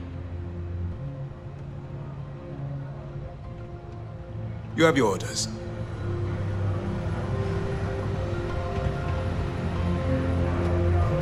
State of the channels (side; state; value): both; identical; correlation 1.00